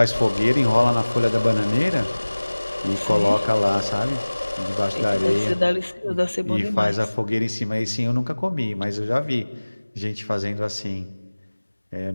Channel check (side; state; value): both; inverted; correlation -1.00